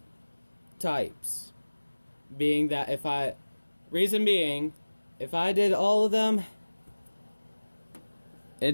types. Being that if I did all of them,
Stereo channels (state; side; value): inverted; both; correlation -1.00